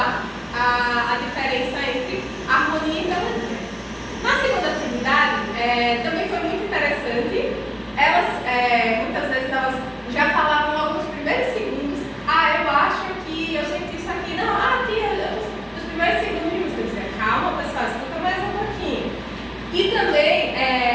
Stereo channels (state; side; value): identical; both; correlation 1.00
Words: a diferença entre harmonia e melodia. Na segunda atividade, também foi muito interessante. Elas, muitas vezes, elas já falavam logo nos primeiros segundos: eu acho que eu senti isso aqui. Não, tia, nos primeiros segundos, eu dizia: calma, pessoal, escuta mais um pouquinho. E também,